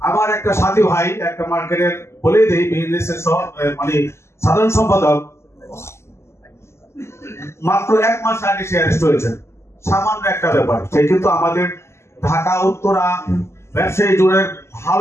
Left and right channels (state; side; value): late; right; 0.13 ms